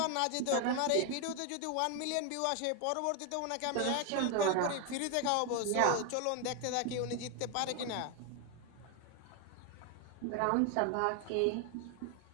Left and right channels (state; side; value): different; both; correlation 0.01